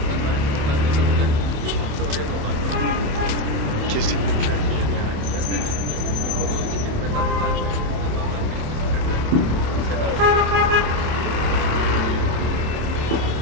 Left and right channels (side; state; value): left; late; 27 ms